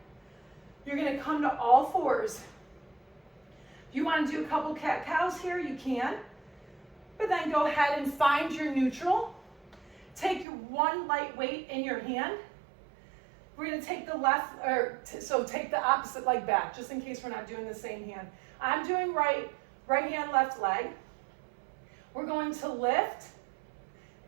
You're gonna come to all 4s. If you wanna do a couple cat-cows here, you can. But then go ahead and find your neutral. Take your 1 light weight in your hand. We're going to take the so take the opposite leg back, just in case we're not doing the same hand. I'm doing right hand, left leg. We're going to lift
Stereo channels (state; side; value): drops out; left; at 10.5 s